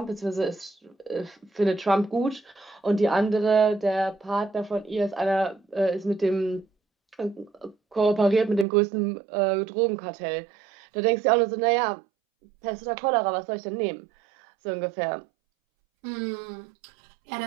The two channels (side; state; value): left; drops out; at 8.7 s